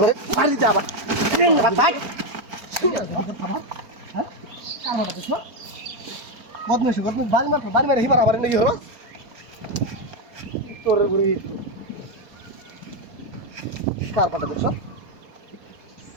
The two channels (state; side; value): late; left; 4.3 ms